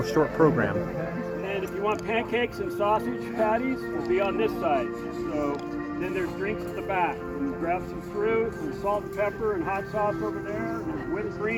short program. And if you want pancakes and sausage patties, it'll be on this side. So then there's drinks at the back. You grab some fruit, some salt and pepper and hot sauce over there. There's whipped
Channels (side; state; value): both; identical; correlation 1.00